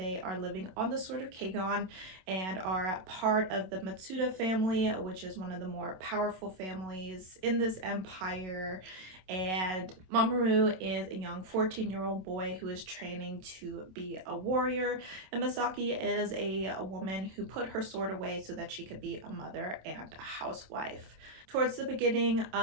are living on the Sort of Kegan and are part of the Matsuda family, which is one of the more powerful families in this empire. And Mamoru is a young 14-year-old boy who is training to be a warrior, and Misaki is a woman who put her sword away so that she could be a mother and a housewife. Towards the beginning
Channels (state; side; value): late; left; 27 ms